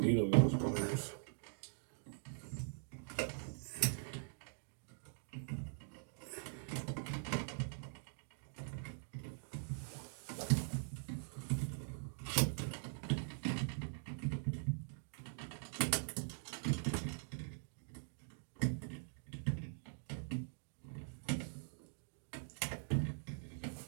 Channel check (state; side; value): silent; left; digital silence